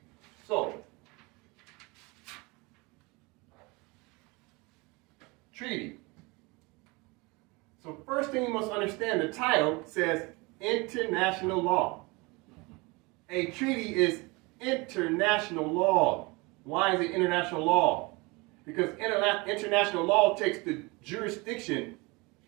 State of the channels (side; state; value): left; quieter; 25.9 dB